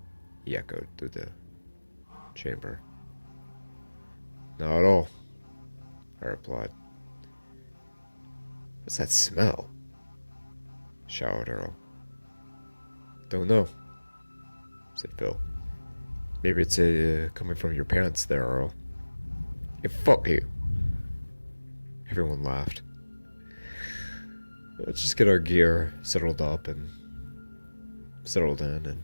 He echoed through the chamber. Not at all, I replied. What's that smell? Shouted Earl. Don't know, said Phil. Maybe it's coming from your parents there, Earl. Hey, fuck you. Everyone laughed. Let's just get our gear settled up and settled in and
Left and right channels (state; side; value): inverted; both; correlation -1.00